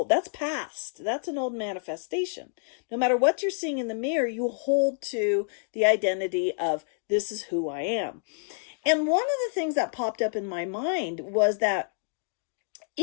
That's past. That's an old manifestation. No matter what you're seeing in the mirror, you hold to the identity of this is who I am. And one of the things that popped up in my mind was that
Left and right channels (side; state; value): right; silent; digital silence